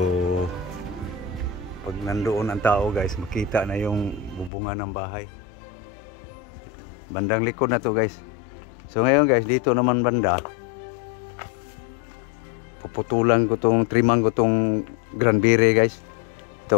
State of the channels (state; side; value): drops out; right; at 4.5 s